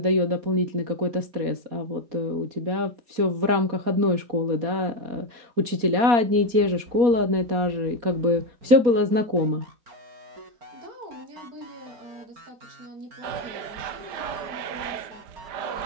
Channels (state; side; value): late; left; 4.2 ms